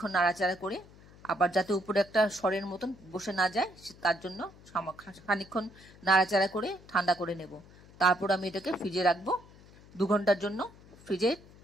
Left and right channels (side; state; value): left; noise; hum, 23 dB below the sound